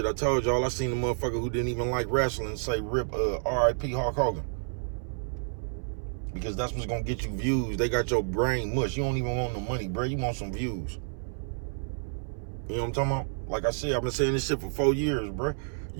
I told y'all, I seen a motherfucker who didn't even like wrestling say rip R.I.P. Hulk Hogan. Because that's what's gonna get you views. They got your brain mush. You don't even want no money, bro. You want some views. You know what I'm talking about? Like I said, I've been saying this shit for 4 years, bro.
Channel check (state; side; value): silent; left; 58 dB below the other